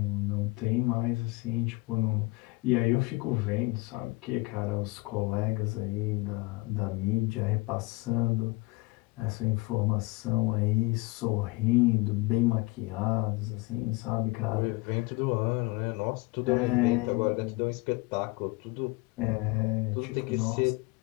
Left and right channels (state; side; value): quieter; right; 23.2 dB